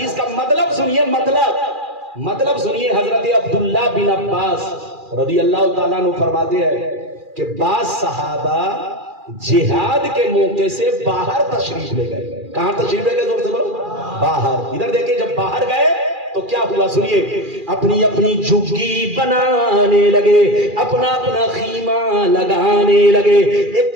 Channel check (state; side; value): late; left; 2.4 ms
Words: کا مطلب سنیے، مطلب سنیے۔ حضرت عبداللہ بن عباس رضی اللہ تعالیٰ عنہ فرماتے ہیں کہ بعض صحابہ جہاد کے موقع سے باہر تشریف لے گئے۔ کہاں تشریف لے گئے؟ زور سے بولو، باہر۔ ادھر دیکھیں، جب باہر گئے تو کیا ہوا سنیے، اپنی اپنی جھگی بنانے لگے، اپنا اپنا خیمہ لگانے لگے، ایک